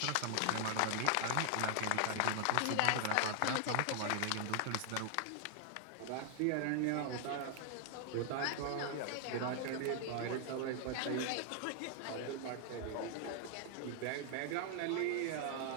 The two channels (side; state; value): both; different; correlation 0.00